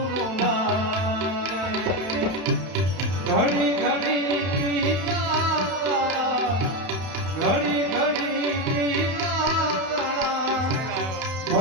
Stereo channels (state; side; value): late; left; 31 ms